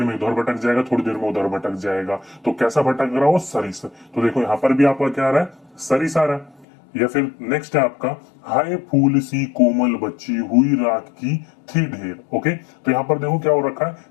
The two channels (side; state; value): right; drops out; at 6.7 s